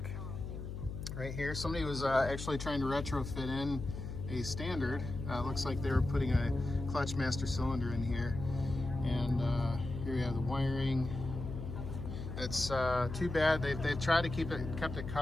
Right here, somebody was actually trying to retrofit in a standard. Looks like they were putting a clutch master cylinder in here, and here you have the wiring. It's too bad they tried to kept it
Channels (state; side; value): noise; left; hum, 7 dB below the sound